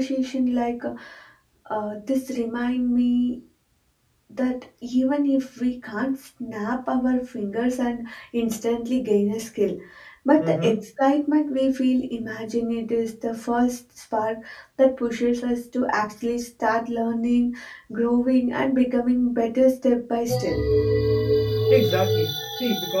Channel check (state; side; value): identical; both; correlation 1.00